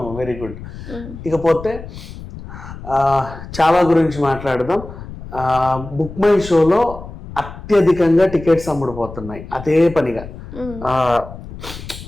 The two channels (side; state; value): left; noise; rumble, 13 dB below the sound